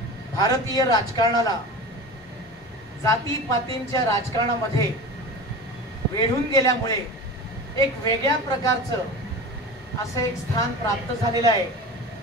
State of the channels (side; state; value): both; normal; correlation 0.33